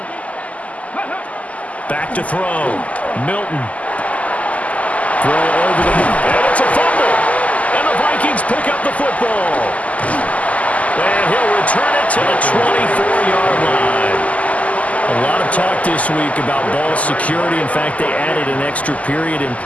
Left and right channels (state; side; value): late; right; 0.071 ms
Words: Back to throw. Milton. Throw over the... And it's a fumble. And the Vikings pick up the football. And he'll return it to the 24-yard line. A lot of talk this week about ball security. In fact, they added an extra period in